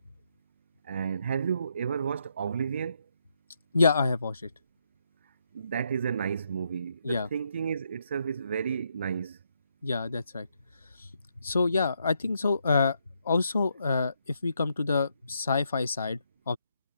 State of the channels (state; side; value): inverted; both; correlation -0.77